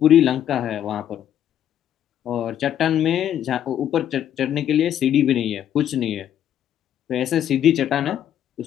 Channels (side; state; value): right; quieter; 10.4 dB